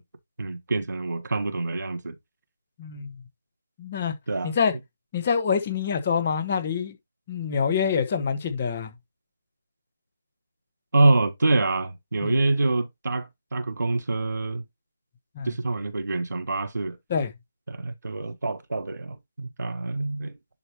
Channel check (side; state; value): both; inverted; correlation -0.81